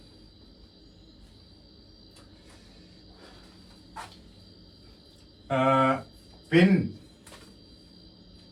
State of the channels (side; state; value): both; identical; correlation 1.00